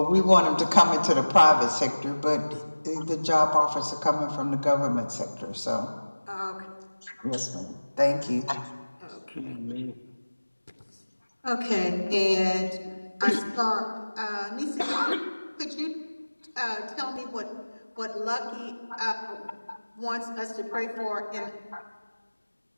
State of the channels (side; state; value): both; inverted; correlation -1.00